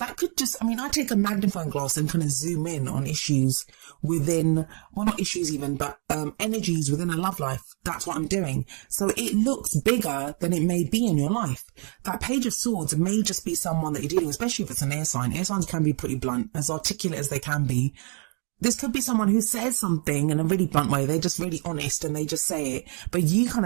could just, I take a magnifying glass and kind of zoom in on issues within, well, not issues even, but energies within a love life. That's what I'm doing. So it looks bigger than it may be in your life. That Page of Swords may just be someone that you're dealing with, especially if it's an air sign. Air signs can be pretty blunt, as articulate as they can be. This could be someone who says something in a really blunt way. They're just really honest and they just say it. But you kind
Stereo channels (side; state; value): left; quieter; 39.8 dB